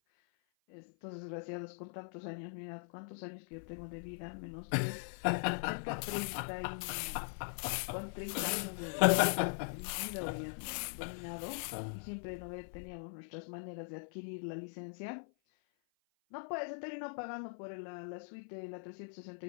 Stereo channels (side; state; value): right; silent; 51 dB below the other